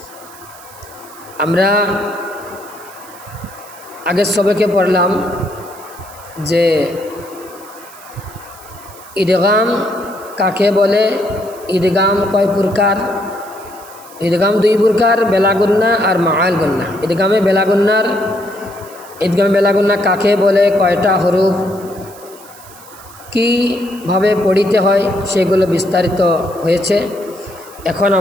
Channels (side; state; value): right; noise; hiss, 21 dB below the sound